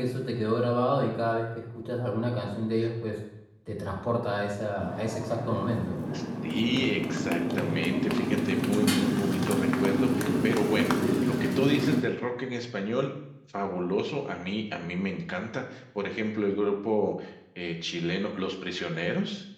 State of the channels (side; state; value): both; identical; correlation 1.00